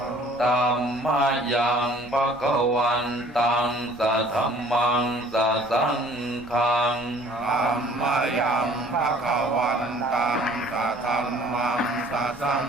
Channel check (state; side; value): normal; both; correlation 0.54